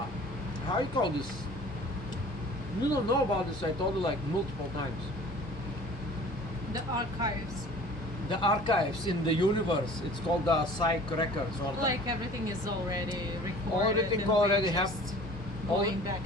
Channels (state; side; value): normal; both; correlation 0.46